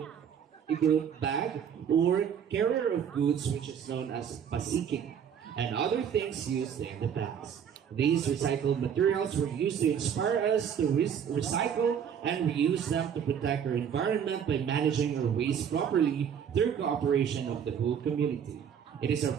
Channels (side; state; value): left; quieter; 8.1 dB